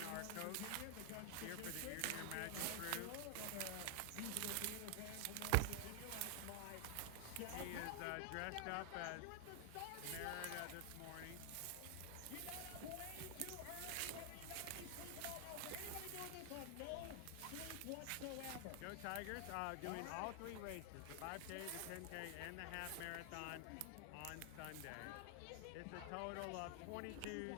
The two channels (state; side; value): different; both; correlation 0.00